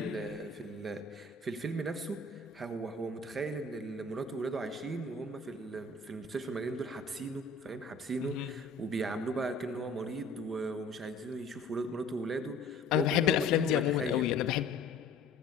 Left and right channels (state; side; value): quieter; right; 3.4 dB